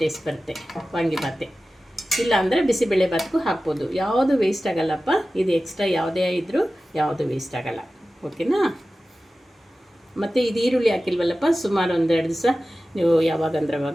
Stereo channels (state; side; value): normal; both; correlation 0.95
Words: ಬರುತ್ತೆ ವಾಂಗಿಬಾತೆ. ಇಲ್ಲ ಅಂದರೆ ಬಿಸಿಬೇಳೆ ಬಾತ್ಗೂ ಹಾಕ್ಬೋದು. ಯಾವುದು ವೇಸ್ಟ್ ಆಗಲ್ಲಪ್ಪ. ಇದು ಎಕ್ಸ್ಟ್ರಾ ಯಾವುದೇ ಇದ್ದರೂ ಯಾವುದು ವೇಸ್ಟ್ ಆಗಲ್ಲ. ಓಕೆನಾ? ಮತ್ತು ಇದು ಈರುಳ್ಳಿ ಹಾಕಿಲ್ವಲ್ಲಪ್ಪ, ಸುಮಾರು 1-2 ದಿವಸ ನೀವು ಯಾವಾಗಂದ್ರೆ